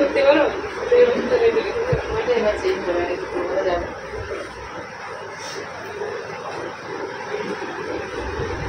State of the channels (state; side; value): identical; both; correlation 1.00